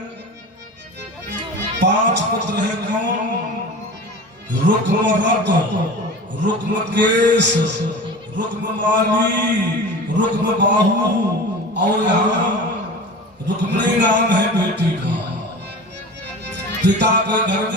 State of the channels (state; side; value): normal; both; correlation 0.34